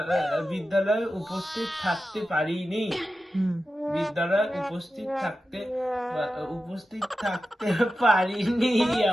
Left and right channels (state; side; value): normal; both; correlation 0.92